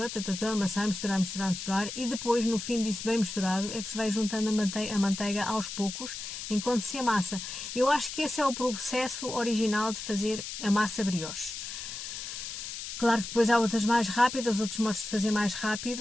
amassar, misturar, e depois, no fim disso bem misturado, é que se vai juntando a manteiga aos poucos, enquanto se amassa. Eu acho que esse é o processo original de fazer a massa brioche. Claro que depois há outras mais rápidas, outros modos de fazer mais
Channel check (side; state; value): left; noise; hiss, 7 dB below the sound